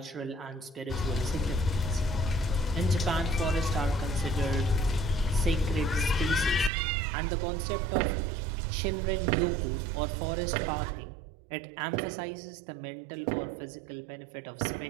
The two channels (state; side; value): drops out; left; at 6.7 s